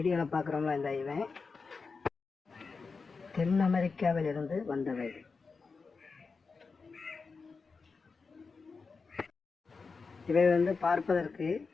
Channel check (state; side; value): quieter; right; 4.7 dB